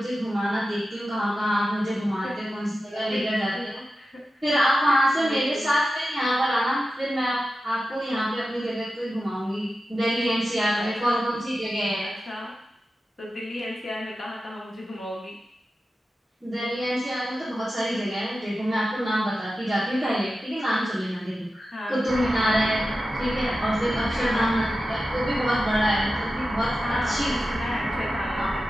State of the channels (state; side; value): normal; both; correlation 0.93